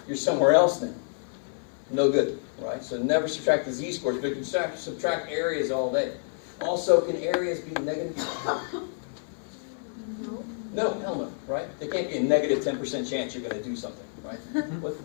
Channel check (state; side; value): silent; right; 59 dB below the other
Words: you're somewhere else then. No good, right? So never subtract the z-scores, but you can subtract areas all day. Also, can areas be negative? No, hell no, right? There can't be a negative 10% chance you're going to do something, right?